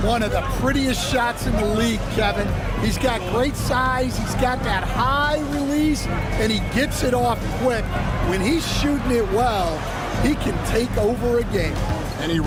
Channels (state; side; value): identical; both; correlation 1.00